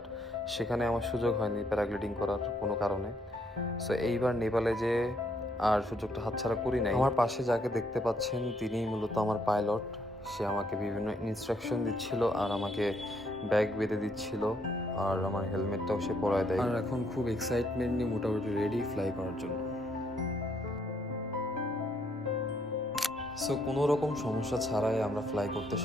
সেখানে আমার সুযোগ হয়নি প্যারাগ্লাইডিং করার কোনো কারণে। সো এইবার নেপালে যে আর সুযোগটা হাতছাড়া করি নাই। আমার পাশে যাকে দেখতে পাচ্ছেন তিনিই মূলত আমার পাইলট। সে আমাকে বিভিন্ন ইনস্ট্রাকশন দিচ্ছিল আর আমাকে ব্যাগ বেঁধে দিচ্ছিল, আর আমার হেলমেটটাও সে পরায় দেয়। আর এখন খুব এক্সাইটমেন্ট নিয়ে মোটামুটি রেডি ফ্লাই করার জন্য। সো কোনো রকম সমস্যা ছাড়াই আমরা ফ্লাই করতে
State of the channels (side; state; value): both; normal; correlation 0.71